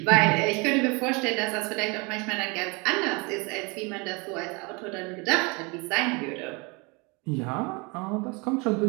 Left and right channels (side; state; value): left; quieter; 28.9 dB